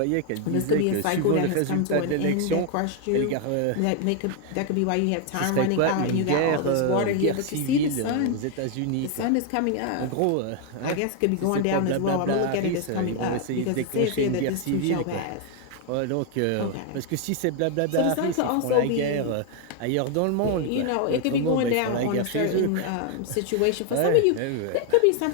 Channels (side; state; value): both; different; correlation 0.00